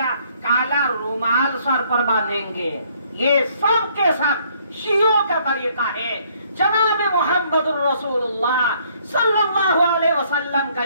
کالا رومال سر پر باندھیں گے. یہ سب کے سب شیعوں کا طریقہ ہے. جناب محمد الرسول اللہ صلی اللہ علیہ وسلم کا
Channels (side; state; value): both; inverted; correlation -0.65